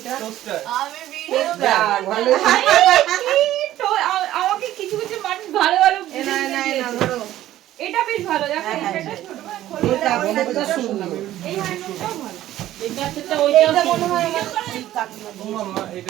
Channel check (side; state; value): left; quieter; 13.7 dB